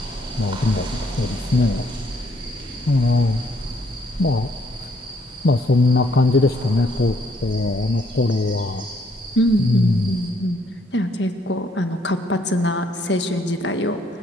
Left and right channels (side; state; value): both; normal; correlation 0.69